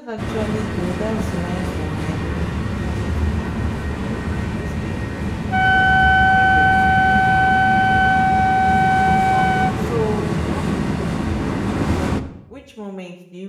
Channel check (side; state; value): both; identical; correlation 1.00